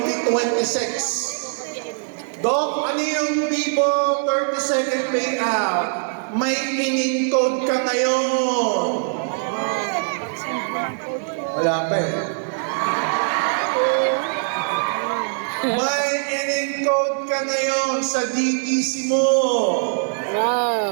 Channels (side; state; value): left; silent; 60 dB below the other